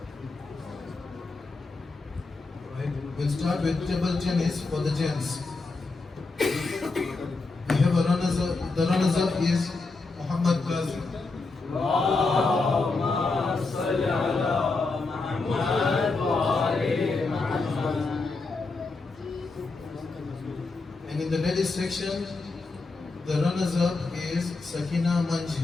Right. We'll start with table tennis for the gents. We have a runners-up. The runners-up is Muhammad Qazi. And in the ladies section, the runners-up is Sakina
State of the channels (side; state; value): right; quieter; 3.7 dB